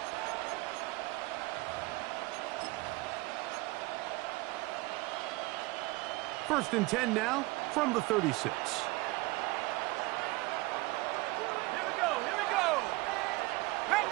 First and 10 now from the 36.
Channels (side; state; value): left; quieter; 22.2 dB